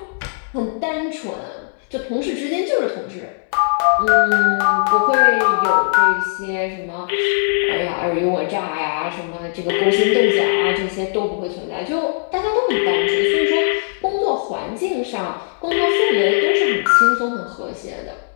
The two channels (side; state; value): right; silent; digital silence